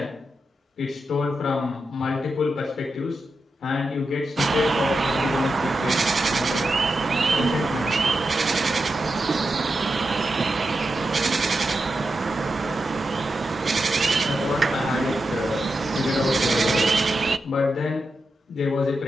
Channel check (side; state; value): both; normal; correlation 0.88